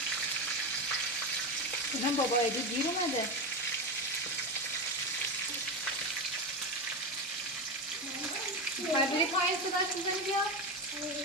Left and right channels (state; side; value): normal; both; correlation 0.17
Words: اینم بابا ایدی دیر اومده. میخوای بری پایین صداش میزنی بیا؟